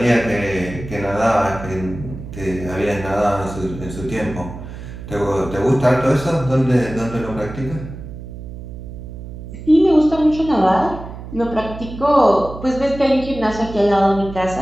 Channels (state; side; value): noise; right; hum, 12 dB below the sound